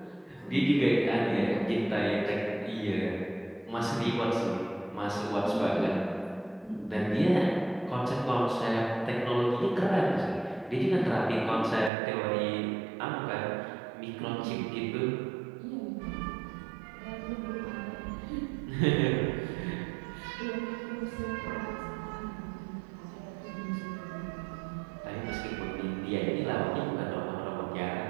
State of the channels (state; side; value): drops out; left; at 11.9 s